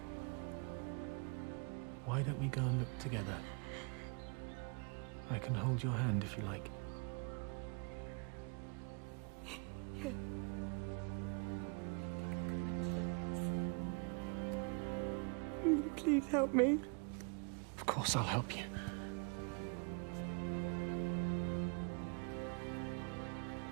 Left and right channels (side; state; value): left; quieter; 35.6 dB